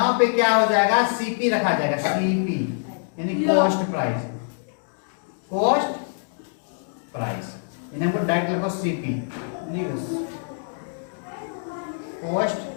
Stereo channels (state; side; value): silent; right; digital silence